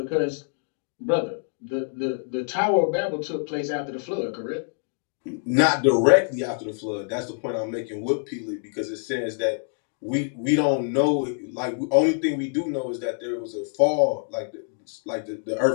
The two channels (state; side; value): silent; right; digital silence